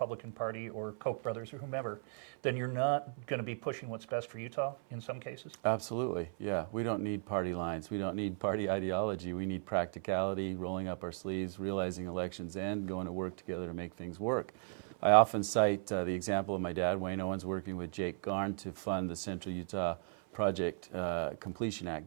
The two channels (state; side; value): silent; left; 53 dB below the other